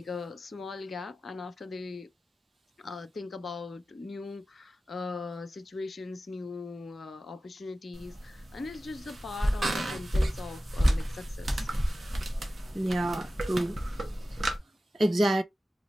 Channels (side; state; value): both; normal; correlation 0.95